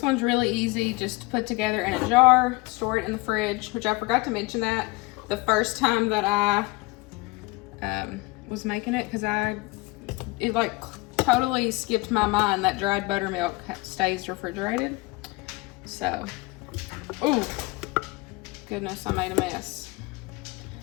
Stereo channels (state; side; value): quieter; right; 23.6 dB